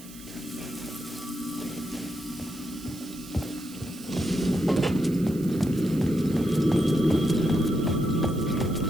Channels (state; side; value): noise; right; hiss, 19 dB below the sound